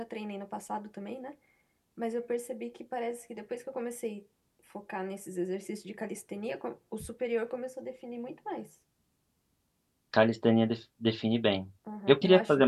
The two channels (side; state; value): both; identical; correlation 1.00